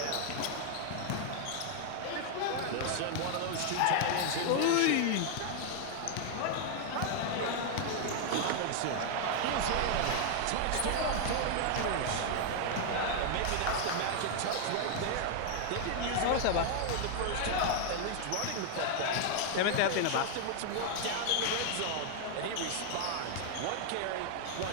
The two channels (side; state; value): both; different; correlation 0.00